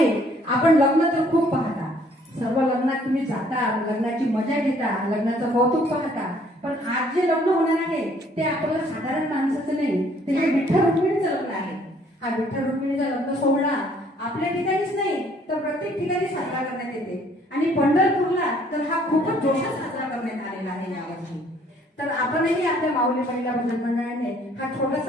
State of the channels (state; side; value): normal; both; correlation 0.61